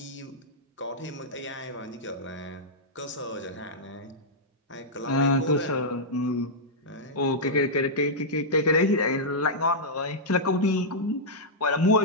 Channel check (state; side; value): normal; both; correlation -0.08